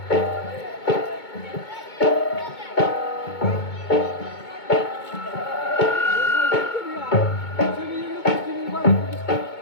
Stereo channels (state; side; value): late; right; 2.2 ms